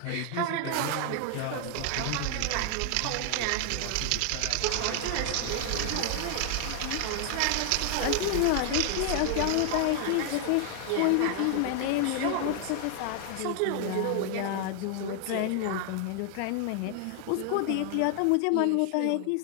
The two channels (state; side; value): different; both; correlation 0.00